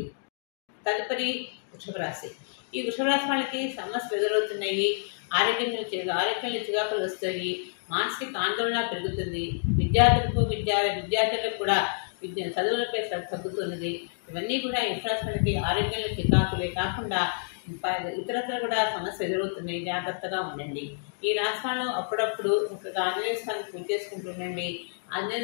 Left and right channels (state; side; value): silent; right; digital silence